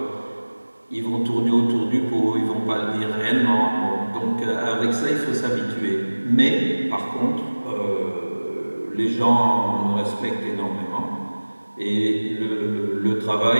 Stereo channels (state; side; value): inverted; both; correlation -1.00